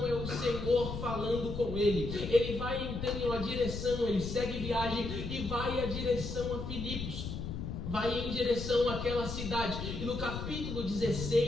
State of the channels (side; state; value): left; noise; rumble, 6 dB below the sound